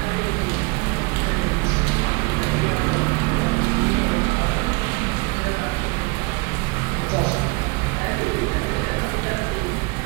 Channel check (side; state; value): left; quieter; 27.7 dB